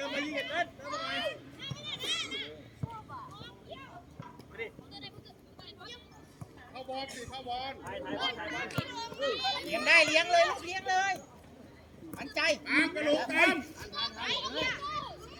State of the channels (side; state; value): both; identical; correlation 1.00